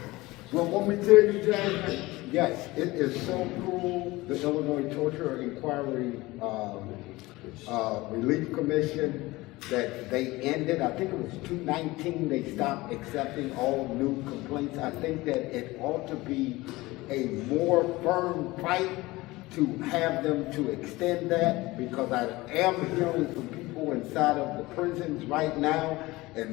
Well, what we did, Jasmine, yes, it is so cool, the Illinois Torture Inquiry Relief Commission, that they ended, I think it was 2019, they stopped accepting all new complaints. I think that it ought to be a more firm fight to have them to extend that, because I am hearing from people inside of the prisons right now,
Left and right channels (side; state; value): right; quieter; 20.2 dB